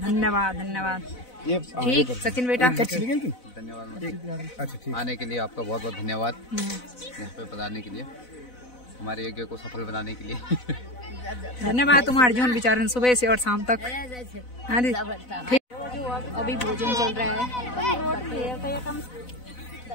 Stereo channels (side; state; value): right; late; 4.0 ms